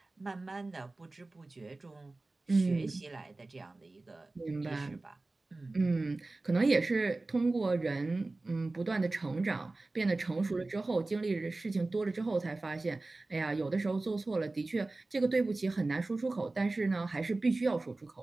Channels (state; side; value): quieter; left; 3.2 dB